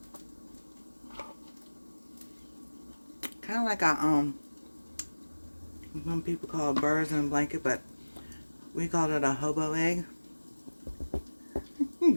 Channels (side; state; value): both; inverted; correlation -1.00